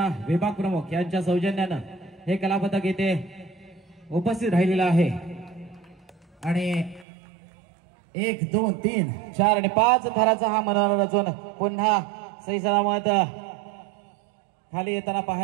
विभाग प्रमुख यांच्या सौजन्यानं हे कलापथक येथे उपस्थित राहिलेलं आहे. आणि 1 2 3 4 आणि 5 थराचा हा मनोहर रचून पुन्हा सही सलामत खाली येताना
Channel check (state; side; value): drops out; left; at 7.1 s